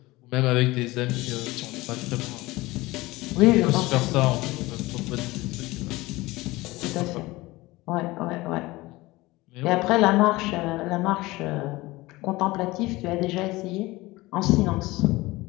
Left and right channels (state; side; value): quieter; right; 20.3 dB